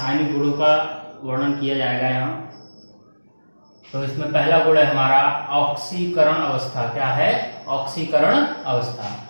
गुणों का वर्णन किया जाएगा यहाँ। तो इसमें पहला गुण है हमारा ऑक्सीकरण अवस्था। क्या है? ऑक्सीकरण अवस्था।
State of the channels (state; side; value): inverted; both; correlation -1.00